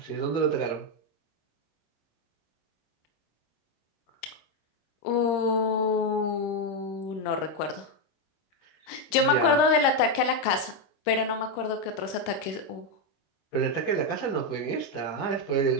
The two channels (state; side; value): late; right; 26 ms